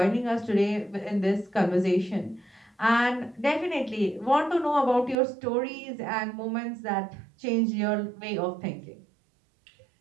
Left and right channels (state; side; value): drops out; left; at 5.2 s